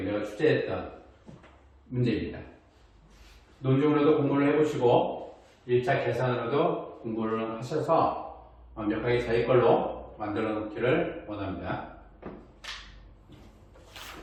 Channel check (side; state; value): both; identical; correlation 1.00